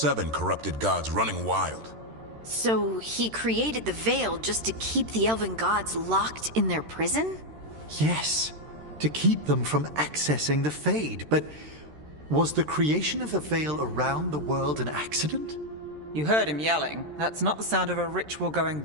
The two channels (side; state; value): left; late; 13 ms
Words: corrupted gods running wild. So he created the veil just to keep the elven gods locked in their prison? Yes, to keep them from accessing the Fade. But was the creation of the veil around the world an accident? You heard him yelling. That's not the sound of a ritual going